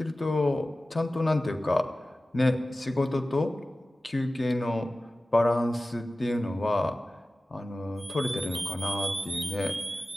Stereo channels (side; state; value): both; normal; correlation 0.96